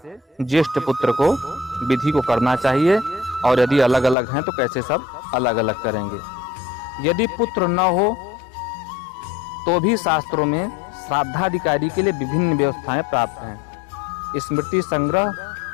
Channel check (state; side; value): drops out; right; at 4.2 s